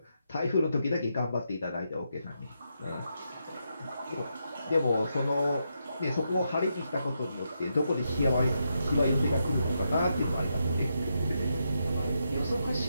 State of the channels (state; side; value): inverted; both; correlation -0.83